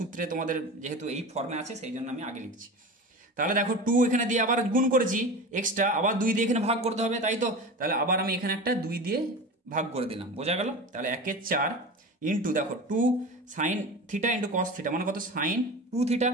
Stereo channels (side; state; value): both; normal; correlation 0.30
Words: তোমাদের যেহেতু এই ফর্মে আছে সেই জন্য আমি আগে লিখছি। তাহলে দেখো 2 এখানে দিয়ে আবার গুণ করেছি এক্সট্রা, আবার 2 দিয়ে এখানে ভাগ করতে হবে, তাই তো। তাহলে আবার আমি এখানে একটা 2 দিয়ে ভাগ করে দিলাম, বোঝা গেল। তাহলে 1/4 ইন্টু দেখো 2 sine theta into cos theta মানে কত, সাইন 2 থিটা